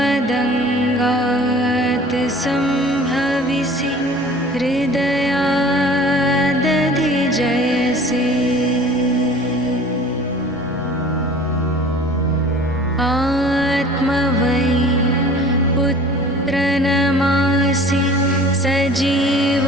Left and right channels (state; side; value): noise; right; hum, 29 dB below the sound